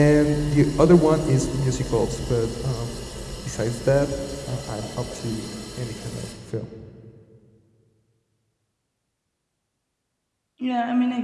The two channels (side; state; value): both; identical; correlation 1.00